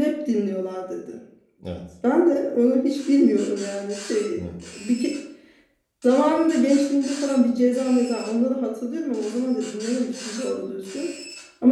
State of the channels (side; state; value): both; identical; correlation 1.00